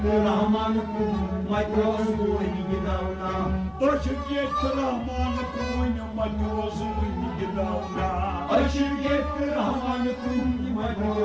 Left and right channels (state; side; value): identical; both; correlation 1.00